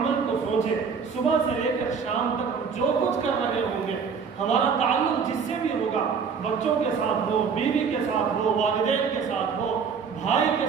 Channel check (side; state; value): left; quieter; 6.1 dB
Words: کو سوچیں، صبح سے لے کر شام تک ہم جو کچھ کر رہے ہوں گے، ہمارا تعلق جس سے بھی ہوگا، بچوں کے ساتھ ہو، بیوی کے ساتھ ہو، والدین کے ساتھ ہو، بھائی کے